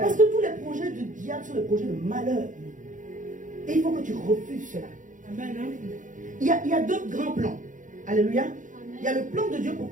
que tous les projets du diable sont des projets de malheur. Et il faut que tu refuses cela. Amen. Il y a deux grands plans. Alléluia. Il y a le plan de Dieu pour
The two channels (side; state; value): left; late; 0.37 ms